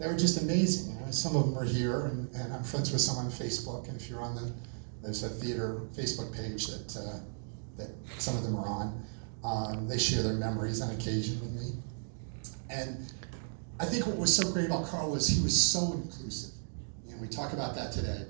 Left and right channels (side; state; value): left; silent; digital silence